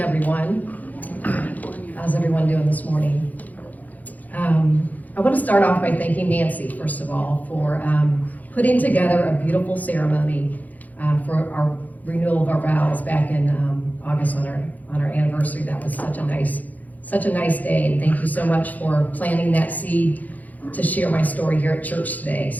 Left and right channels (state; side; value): late; right; 0.080 ms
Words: How's everyone doing this morning? I want to start off by thanking Nancy, first of all, for putting together a beautiful ceremony for our renewal of our vows back in August on our anniversary. That was such a nice day, and thank you so much for planting that seed to share my story here at church today.